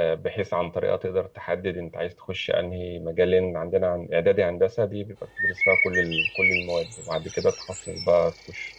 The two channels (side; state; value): both; identical; correlation 1.00